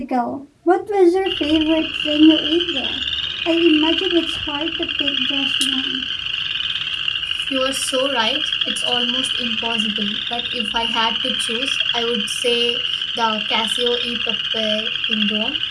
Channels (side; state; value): both; identical; correlation 1.00